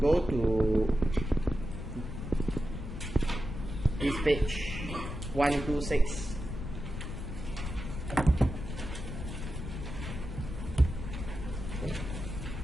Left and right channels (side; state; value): left; noise; rumble, 6 dB below the sound